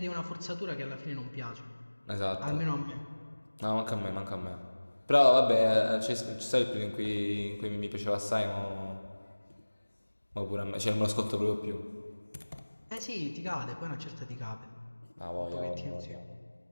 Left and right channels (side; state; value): both; inverted; correlation -1.00